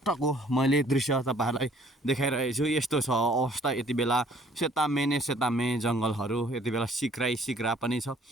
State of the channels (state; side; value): normal; both; correlation 0.58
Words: मैले दृश्य तपाईँहरूलाई देखाइरहेको छु। यस्तो छ अवस्था यति बेला, सेतामे नै सेतामे जङ्गलहरू, यति बेला सिक्रा पनि छ,